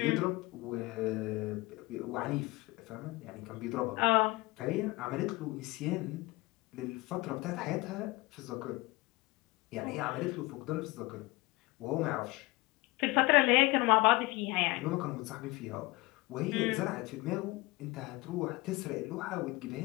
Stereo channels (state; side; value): quieter; right; 22.3 dB